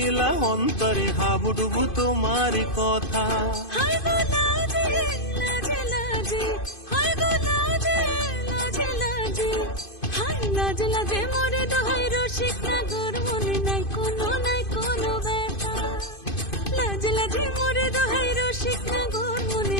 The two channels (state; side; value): late; right; 2.5 ms